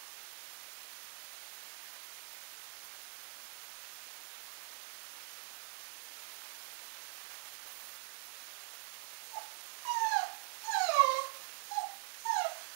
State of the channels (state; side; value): silent; left; digital silence